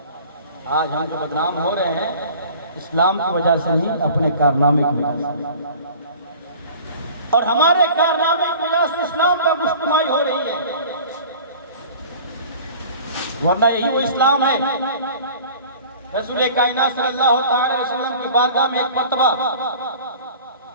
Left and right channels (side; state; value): both; inverted; correlation -0.44